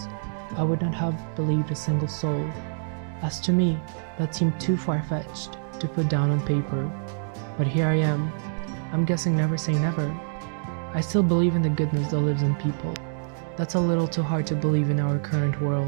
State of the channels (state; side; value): silent; left; digital silence